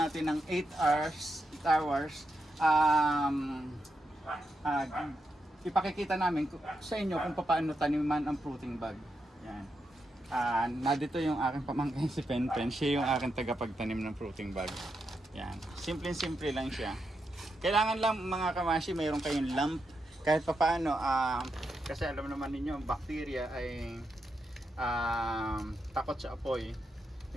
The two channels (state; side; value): normal; both; correlation 0.84